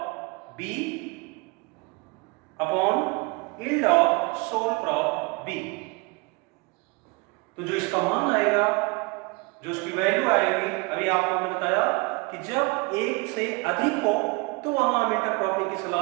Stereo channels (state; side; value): quieter; left; 27.8 dB